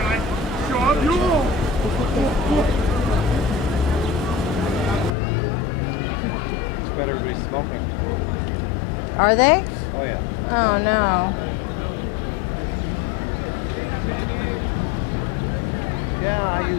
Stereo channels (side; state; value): right; drops out; at 5.2 s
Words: Everybody's smoking. Are they? Oh yeah. Oh no. Yeah, I